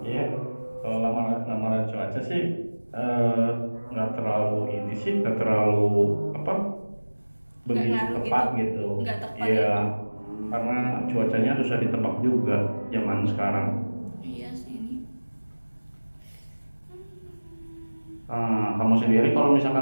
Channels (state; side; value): inverted; both; correlation -1.00